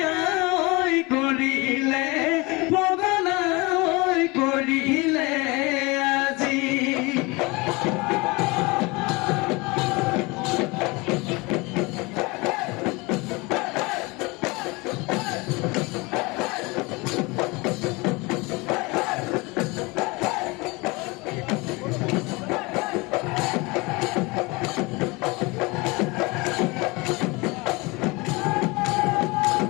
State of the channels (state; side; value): quieter; right; 25.2 dB